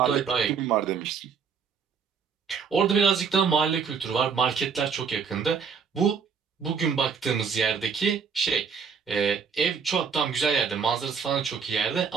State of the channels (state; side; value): quieter; left; 6.2 dB